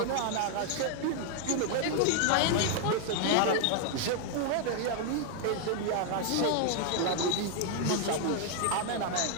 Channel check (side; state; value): both; different; correlation 0.00